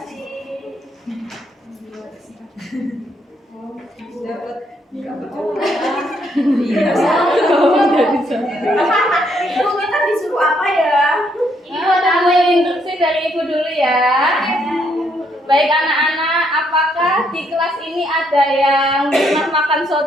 Ibu kita disuruh apa ya? Ini ada instruksi dari Ibu dulu ya. Baik anak-anak, apakah di kelas ini ada yang pernah makan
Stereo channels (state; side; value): normal; both; correlation 0.73